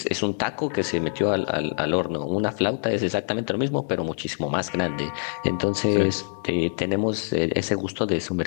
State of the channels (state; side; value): silent; right; digital silence